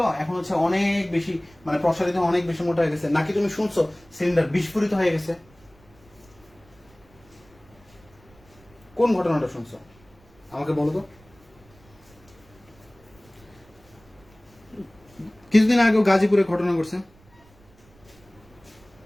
এখন হচ্ছে অনেক বেশি মানে প্রসারিত, অনেক বেশি মোটা হয়ে গেছে? নাকি তুমি শুনছো সিলিন্ডার বিস্ফোরিত হয়ে গেছে? কোন ঘটনাটা শুনছো আমাকে বলো তো। কিছুদিন আগেও গাজীপুরে ঘটনা ঘটছে।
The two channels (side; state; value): right; noise; rumble, 28 dB below the sound